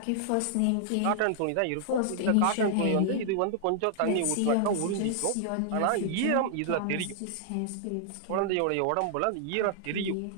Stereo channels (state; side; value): different; both; correlation -0.01